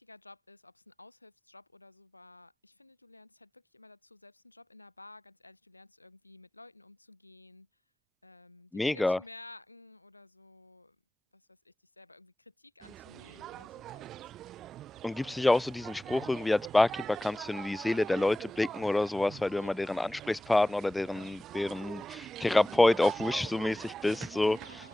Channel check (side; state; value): both; normal; correlation 0.97